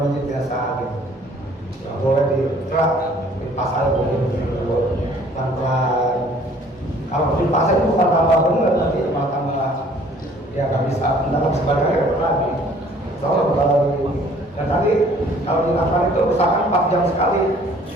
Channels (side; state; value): both; normal; correlation 0.56